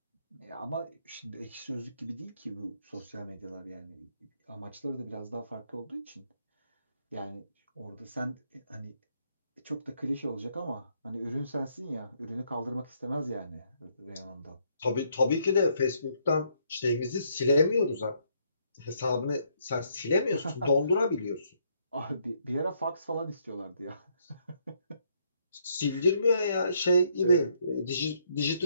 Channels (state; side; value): inverted; both; correlation -0.71